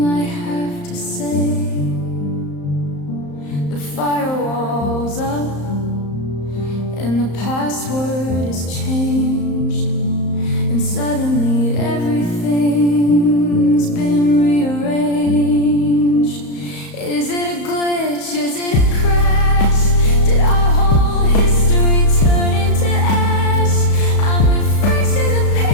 I have to say. The firewall's up and the password is changed, and suddenly everything's been rearranged. Is it a glitch? Is it a crash? Did our whole history turn into ash? I'm refreshing the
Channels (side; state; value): right; late; 34 ms